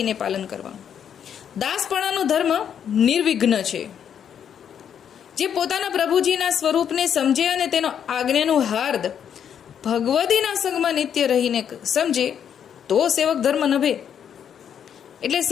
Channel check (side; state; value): right; quieter; 8.5 dB